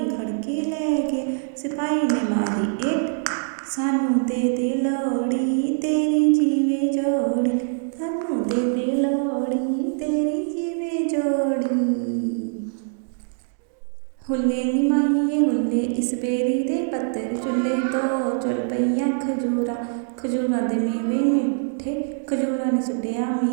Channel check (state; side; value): silent; left; 63 dB below the other